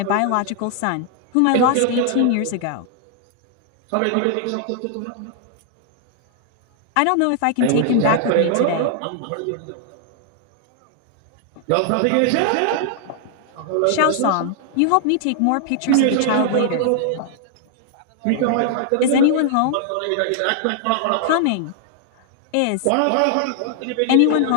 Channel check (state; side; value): different; both; correlation 0.00